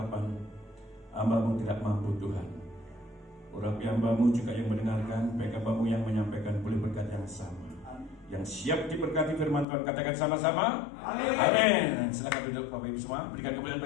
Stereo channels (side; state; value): right; drops out; at 9.7 s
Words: hamba-Mu tidak mampu Tuhan. Urapi hamba-Mu juga yang mendengarkan, baik hamba-Mu yang menyampaikan boleh berkat yang sama. Yang siap diberkati firman Tuhan, katakan sama-sama amin. Amin. Silakan duduk Bapak Ibu semua, berikan kemuliaan